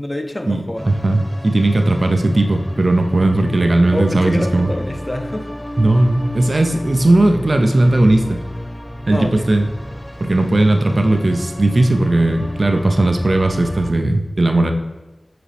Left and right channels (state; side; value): normal; both; correlation 0.97